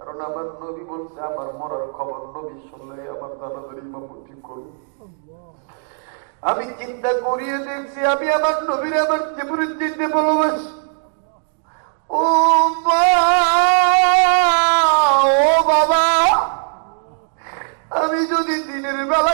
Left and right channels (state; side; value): silent; left; digital silence